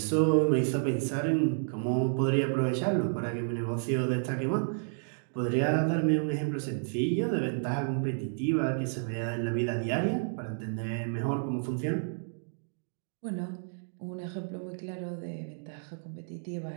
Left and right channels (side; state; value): left; silent; digital silence